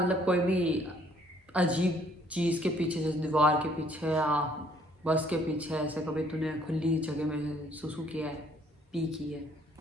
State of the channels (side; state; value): both; normal; correlation 0.63